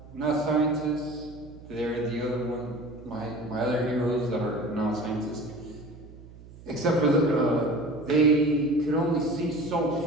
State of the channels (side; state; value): right; noise; hum, 19 dB below the sound